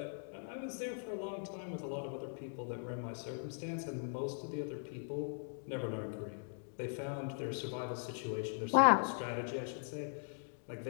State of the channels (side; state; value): right; silent; digital silence